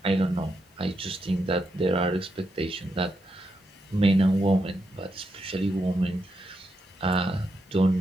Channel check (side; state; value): both; normal; correlation 0.83